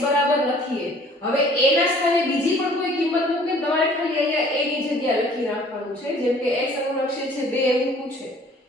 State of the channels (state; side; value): normal; both; correlation 0.54